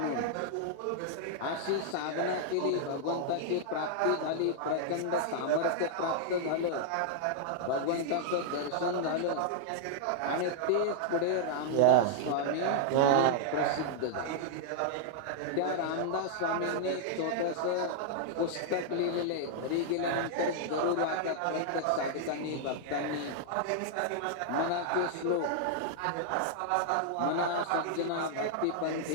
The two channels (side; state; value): both; different; correlation -0.01